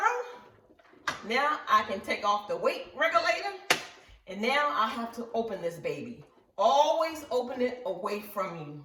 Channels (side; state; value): both; identical; correlation 1.00